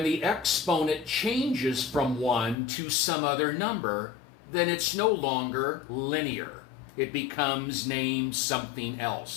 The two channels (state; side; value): drops out; right; at 2.6 s